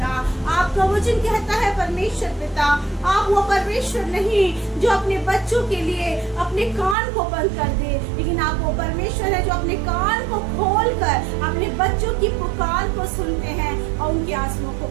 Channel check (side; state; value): left; drops out; at 7.0 s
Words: आपका वचन कहता है परमेश्वर पिता, आप वो परमेश्वर नहीं जो अपने बच्चों के लिए अपने कान को बंद कर दे, लेकिन आप वो परमेश्वर है जो अपने कान को खोलकर अपने बच्चों की पुकार को सुनते हैं और उनके आंसुओं को